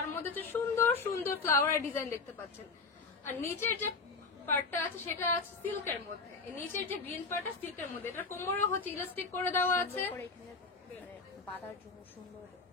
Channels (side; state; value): right; quieter; 4.3 dB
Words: মধ্যে হচ্ছে সুন্দর সুন্দর ফ্লাওয়ারের ডিজাইন দেখতে পাচ্ছেন। আর নিচের যে পার্টটা আছে সেটা আছে সিল্কের মধ্যে, এই নিচের যে গ্রিন পার্টটা সিল্কের মধ্যে। এটা কোমরও হচ্ছে ইলাস্টিক করে দেওয়া আছে, করে এখানে মানে বাঁধার জন্য সুন্দর